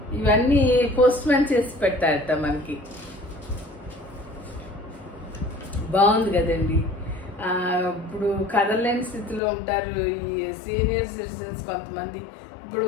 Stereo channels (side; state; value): right; drops out; at 9.4 s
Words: ఇవన్నీ పోస్ట్ మ్యాన్ చేసి పెడతారట మనకి. బాగుంది కదండి. ఇప్పుడు కదలలేని స్థితిలో ఉంటారు ఈ సీనియర్ సిటిజన్స్ కొంతమంది. ఇప్పుడు